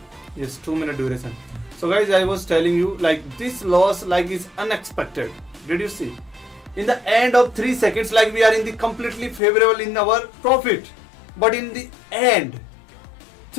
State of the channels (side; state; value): right; drops out; at 9.4 s